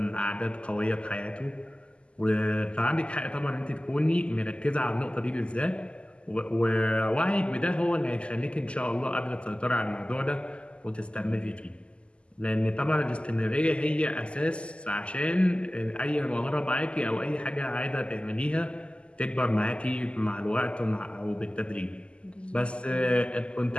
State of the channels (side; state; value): right; late; 0.053 ms